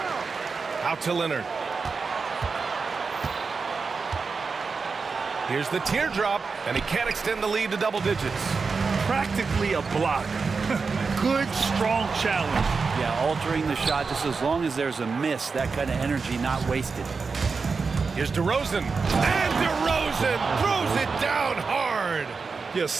Out to Leonard. Here's the teardrop, and he can't extend the lead to double digits. Practically a block. Good, strong challenge. Yeah, altering the shot just as long as there's a miss, that kind of energy not wasted. Here's DeRozan. And DeRozan throws it down hard. Yeah,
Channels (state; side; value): quieter; left; 4.8 dB